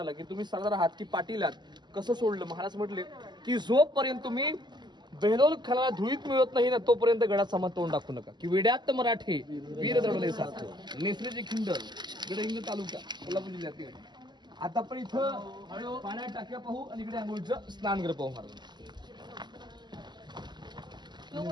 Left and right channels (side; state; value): left; late; 0.21 ms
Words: की तुम्ही सरदार आहात की पाटील आहात कसं सोडलं महाराज म्हटले की जोपर्यंत तुम्ही बेहलोल खानाला धुळीत मिळत नाही ना तोपर्यंत गडात सामान तोंड दाखवू नका की वेड्यात मराठी वीर दडवले सारखं नेसलेची खिंडल गडहिंग्लज तालुका कोल्हापूर जिल्ह्यातील. आता पण इथं पाण्यात टाक्या पाहू आणि इकडे आंघोळीचं स्नानगृह पाहू महाराज.